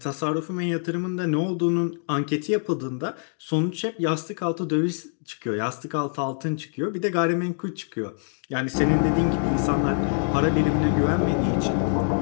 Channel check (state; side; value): silent; right; 62 dB below the other